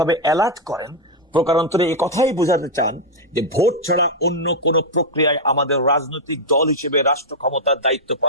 অ্যালার্ট করেন, প্রকারান্তরে এই কথাই বোঝাতে চান যে ভোট ছাড়া অন্য কোন প্রক্রিয়ায় আমাদের রাজনৈতিক দল হিসেবে রাষ্ট্র ক্ষমতার দায়িত্ব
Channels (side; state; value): both; normal; correlation -0.01